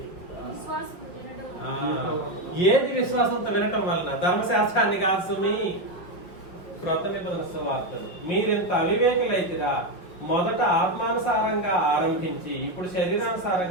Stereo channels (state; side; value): late; right; 5.7 ms